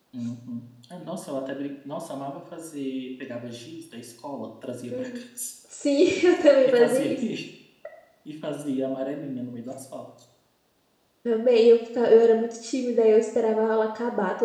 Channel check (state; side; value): identical; both; correlation 1.00